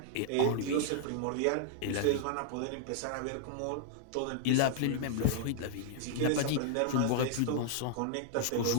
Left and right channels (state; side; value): different; both; correlation -0.01